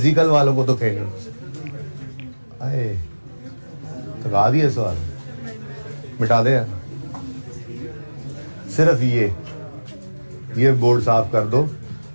वालों को तो कहीं अरे तो गा दिए सवाल, मिटा दे यार, सिर्फ ये बोर्ड साफ कर दो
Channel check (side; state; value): both; inverted; correlation -1.00